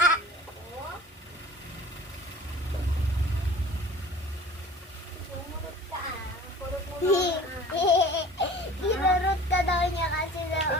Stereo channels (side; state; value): both; normal; correlation 0.45